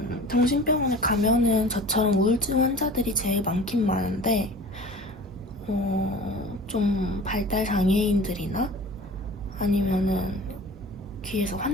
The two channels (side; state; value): both; normal; correlation 0.41